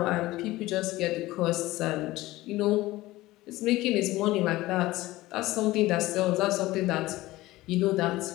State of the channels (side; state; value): right; quieter; 18.1 dB